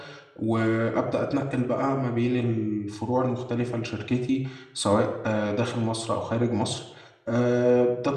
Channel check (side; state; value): both; identical; correlation 1.00